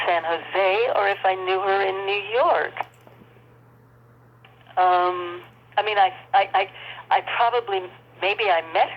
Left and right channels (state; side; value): identical; both; correlation 1.00